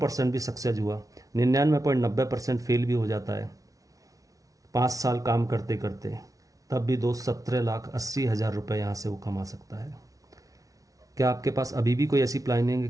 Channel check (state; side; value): late; left; 0.17 ms